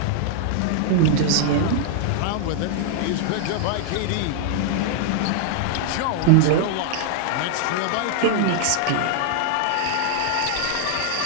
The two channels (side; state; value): both; different; correlation -0.01